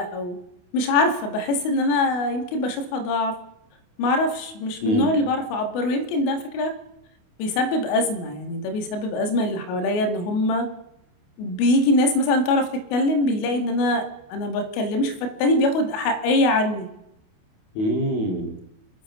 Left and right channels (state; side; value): late; right; 28 ms